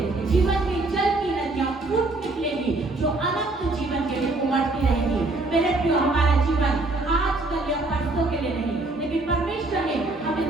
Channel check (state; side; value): quieter; left; 3.1 dB